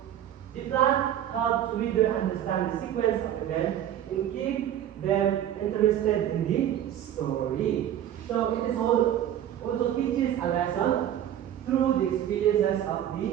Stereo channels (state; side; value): quieter; left; 10.9 dB